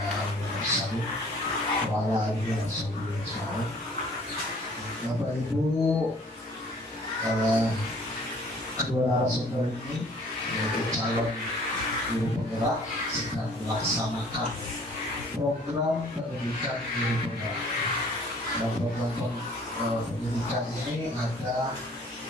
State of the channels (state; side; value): normal; both; correlation 0.54